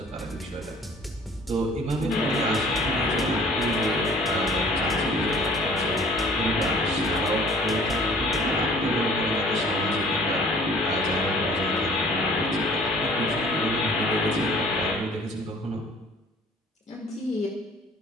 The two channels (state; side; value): normal; both; correlation 0.51